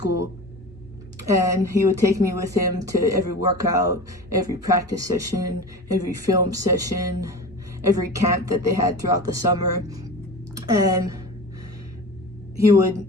And he would take me with him to every workout, every practice session, every film session, every camp that they had throughout the summer. And he would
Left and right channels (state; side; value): normal; both; correlation 0.32